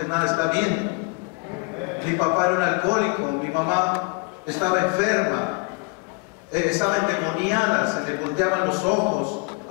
nada está bien? Mi papá era un alcohólico, mi mamá estaba enferma, estaba endemoniada, se le volteaban los ojos,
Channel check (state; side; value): quieter; right; 31.6 dB